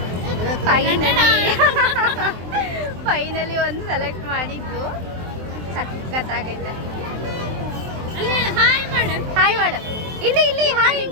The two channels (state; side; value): late; left; 23 ms